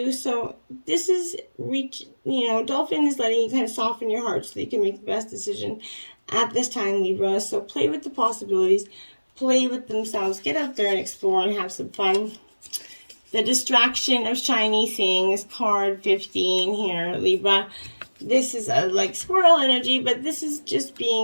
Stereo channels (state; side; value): inverted; both; correlation -1.00